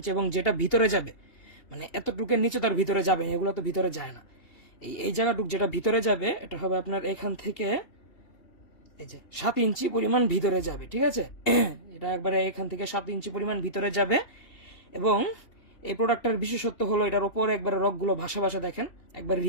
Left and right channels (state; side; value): late; right; 2.8 ms